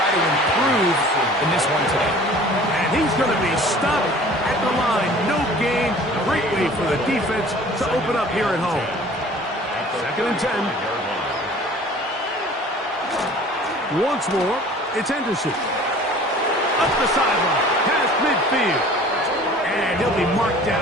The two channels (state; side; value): normal; both; correlation 0.47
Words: to improve in this one today. And he's going to be stopped at the line. No gain. Great way for the defense to open up here at home. 2nd and 10. Once more, it's Henderson. Up the sideline, past midfield. And he'll be marked